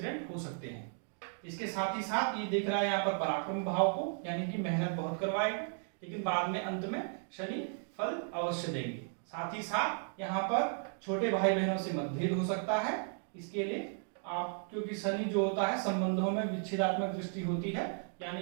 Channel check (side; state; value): left; silent; 54 dB below the other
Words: हो सकते हैं। इसके साथ ही साथ ये देख रहा है यहाँ पर पराक्रम भाव को, यानी कि मेहनत बहुत करवाएगा, लेकिन बाद में अंत में शनि फल अवश्य देंगे। साथ ही साथ यहाँ पर छोटे भाई बहनों से मतभेद हो सकता है। इसके लिए आप, क्योंकि शनि जो होता है संबंधों में विच्छेदात्मक दृष्टि होती है, यानी